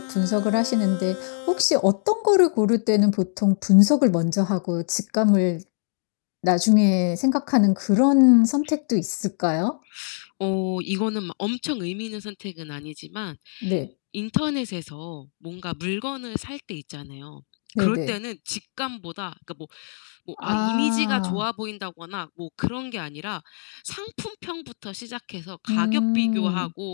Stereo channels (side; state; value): right; silent; 63 dB below the other